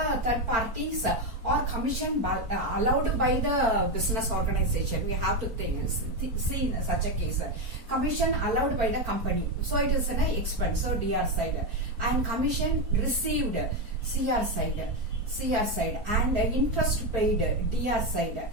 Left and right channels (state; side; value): late; left; 4.3 ms